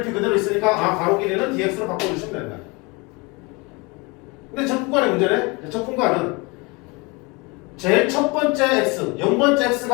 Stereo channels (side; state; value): right; quieter; 27.2 dB